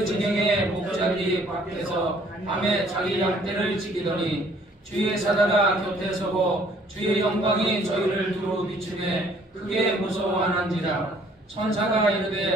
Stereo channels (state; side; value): normal; both; correlation 0.59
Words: 진영에 목자들이 밖에서 밤에 자기 양떼를 지키더니 주의 사자가 곁에 서고 주의 영광이 저희를 두루 비추매 크게 무서워하는지라. 천사가